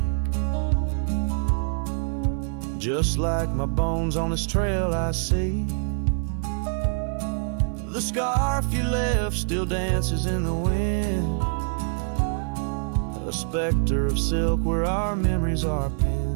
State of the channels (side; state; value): left; silent; digital silence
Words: Just like my bones on this trail I see. The scarf you left still dances in the wind. A specter of silk where our memories are